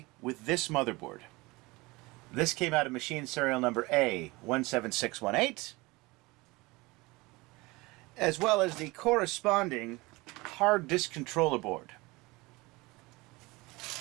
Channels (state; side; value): quieter; left; 23.0 dB